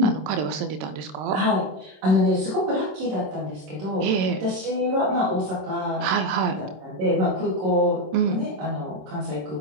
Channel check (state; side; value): late; left; 26 ms